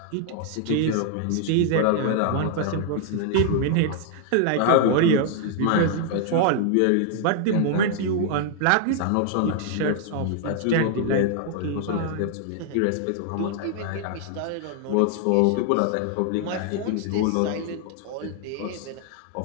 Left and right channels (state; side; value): different; both; correlation 0.00